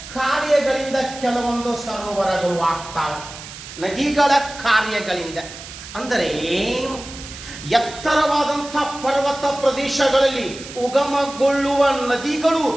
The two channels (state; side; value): noise; right; hiss, 14 dB below the sound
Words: ಕಾರ್ಯಗಳಿಂದ ಕೆಲವೊಂದು ಸರೋವರಗಳು ಆಗ್ತಾವೆ. ನದಿಗಳ ಕಾರ್ಯಗಳಿಂದ ಅಂದರೆ ಎತ್ತರವಾದಂಥ ಪರ್ವತ ಪ್ರದೇಶಗಳಲ್ಲಿ ಉಗಮಗೊಳ್ಳುವ ನದಿಗಳು